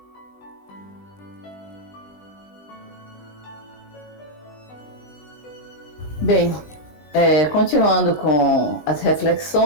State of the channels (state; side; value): late; right; 20 ms